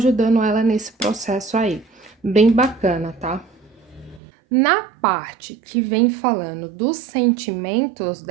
ela nesse processo aí. Bem bacana, tá? Na parte que vem falando dos sentimentos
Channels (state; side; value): drops out; left; at 4.2 s